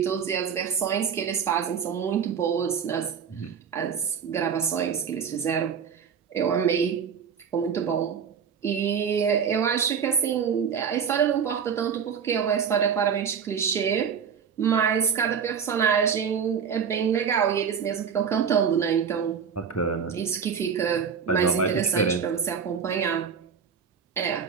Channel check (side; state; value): left; quieter; 7.0 dB